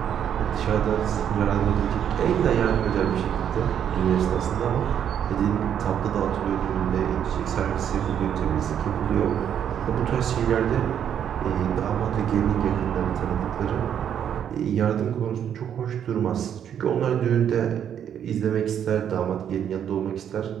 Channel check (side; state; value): left; quieter; 9.1 dB